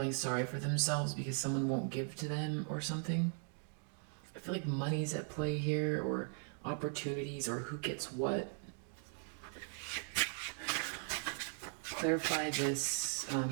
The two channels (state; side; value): silent; left; 52 dB below the other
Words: sorry for themselves because someone won't give to them or something. I feel like money's at play here, or opportunities, or who gets what. Clarify this